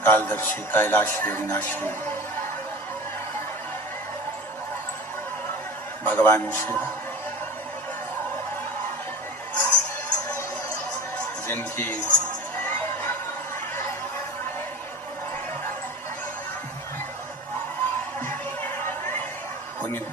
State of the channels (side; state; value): both; normal; correlation 0.33